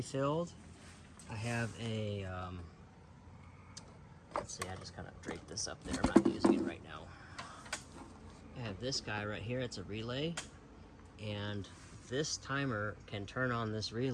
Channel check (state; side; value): identical; both; correlation 1.00